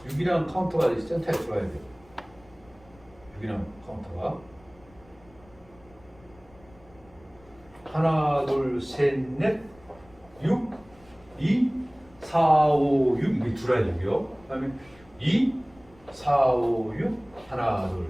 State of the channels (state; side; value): noise; left; rumble, 27 dB below the sound